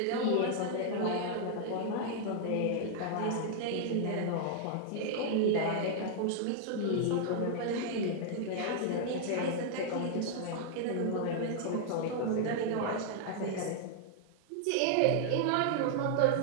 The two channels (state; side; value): different; both; correlation -0.01